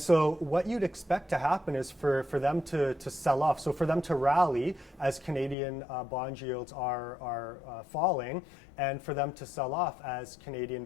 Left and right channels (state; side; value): drops out; right; at 5.6 s